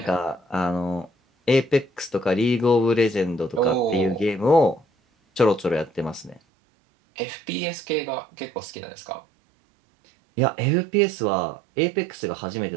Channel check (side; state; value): left; drops out; at 6.4 s